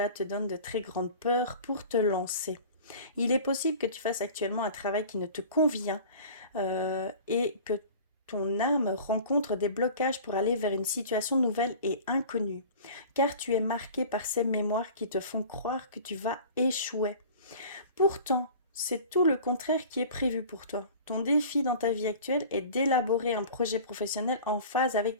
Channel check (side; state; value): both; inverted; correlation -0.41